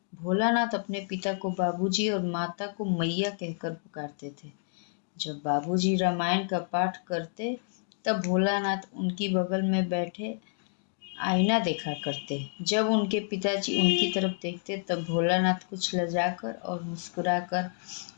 भोलानाथ अपने पिता को बाबूजी और माता को मैया कहकर पुकारते थे। जब बाबूजी रामायण का पाठ करते तब भोलानाथ उनकी बगल में बैठे आईना देखा करते। जब उनके पिताजी उनकी तरफ देखते तब भोलानाथ कुछ लजाकर और मुस्कुराकर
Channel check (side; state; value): right; silent; digital silence